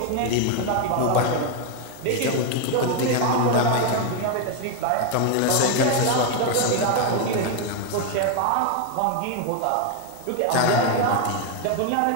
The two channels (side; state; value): both; different; correlation 0.01